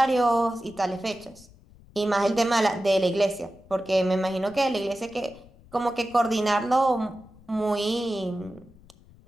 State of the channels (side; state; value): left; noise; rumble, 25 dB below the sound